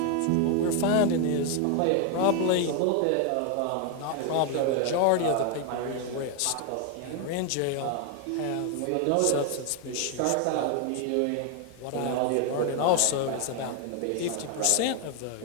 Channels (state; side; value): different; both; correlation 0.01